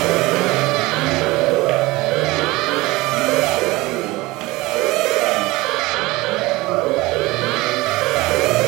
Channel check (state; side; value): quieter; left; 20.9 dB